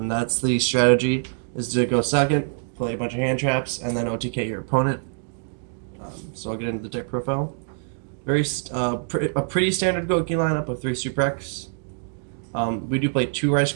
the strategy, is to go second, play a bunch of hand traps, and then OTK your opponent. So I'll get into the deck profile. A pretty standard Gouki lineup of 3 Super X. We do play 2 Rice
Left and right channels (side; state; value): left; silent; digital silence